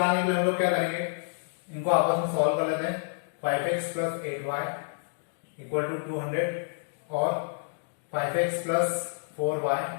के लिए हम लोग क्या करेंगे, इनको आपस में सॉल्व कर लेते हैं। 5x plus 8y equal to 200 और 5x plus 4y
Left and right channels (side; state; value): right; silent; digital silence